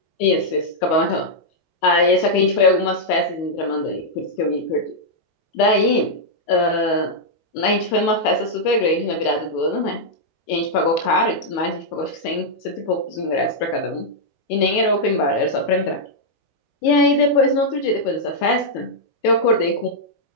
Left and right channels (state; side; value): late; right; 19 ms